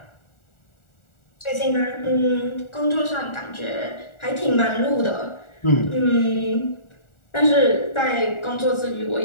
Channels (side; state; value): right; late; 1.4 ms